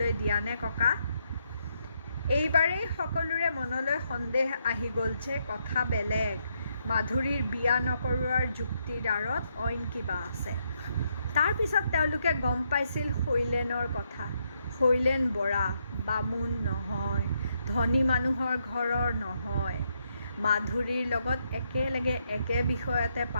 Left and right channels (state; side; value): inverted; both; correlation -0.77